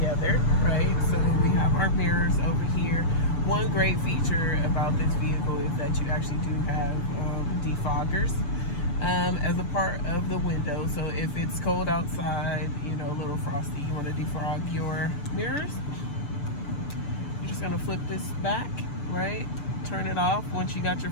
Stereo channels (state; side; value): late; right; 6.7 ms